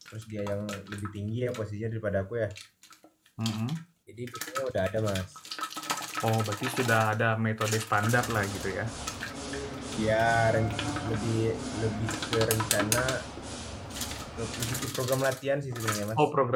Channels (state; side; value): identical; both; correlation 1.00